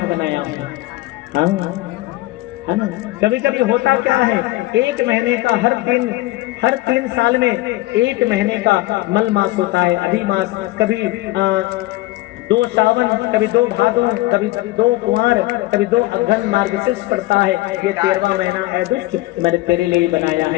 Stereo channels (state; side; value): quieter; right; 18.9 dB